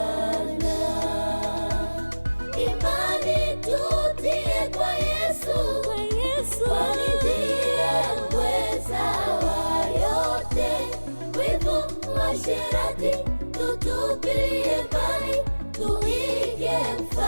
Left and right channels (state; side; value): inverted; both; correlation -1.00